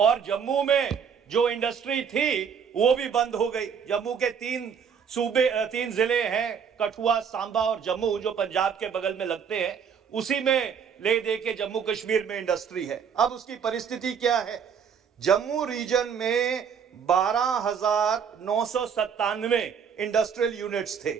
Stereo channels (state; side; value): quieter; left; 7.1 dB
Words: जम्मू में जो इंडस्ट्री थी वो भी बंद हो गई। जम्मू के 3 जिले हैं, कठुआ, सांबा और जम्मू, जो पंजाब के बगल में लगते हैं, उसी में ले दे के जम्मू कश्मीर में इंडस्ट्री है। अब उसकी परिस्थिति क्या है? जम्मू रीजन में 12,997 इंडस्ट्रियल यूनिट्स थे,